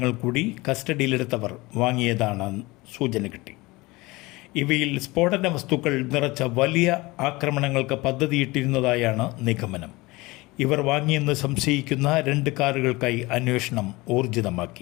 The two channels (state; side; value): quieter; right; 22.2 dB